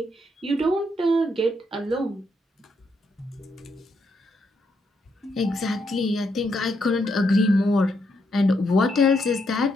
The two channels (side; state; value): both; normal; correlation 0.78